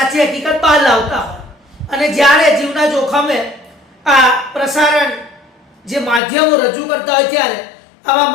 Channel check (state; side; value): drops out; right; at 6.2 s